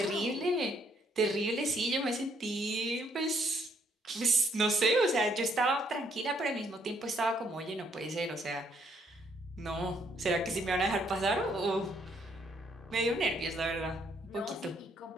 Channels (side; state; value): both; normal; correlation 0.69